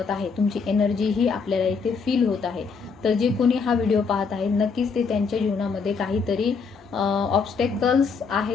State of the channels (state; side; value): quieter; right; 5.2 dB